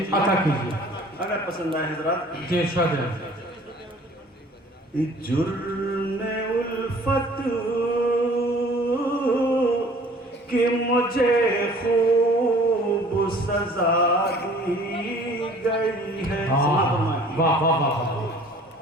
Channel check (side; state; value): both; normal; correlation 0.51